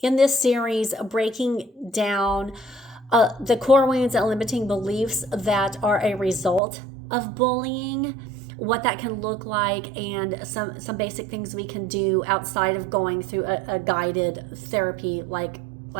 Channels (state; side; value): drops out; left; at 6.6 s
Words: in this series, breaking down the core wounds and limiting beliefs that are a result of bullying, what that can look like, and some basic things we can do outside of going through a guided therapy like